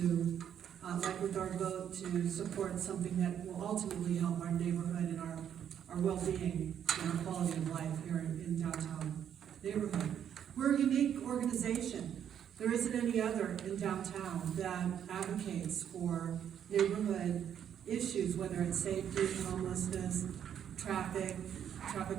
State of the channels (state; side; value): quieter; left; 9.2 dB